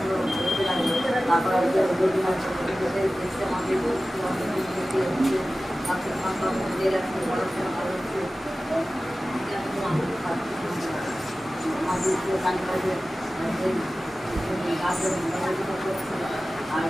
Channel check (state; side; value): normal; both; correlation 0.96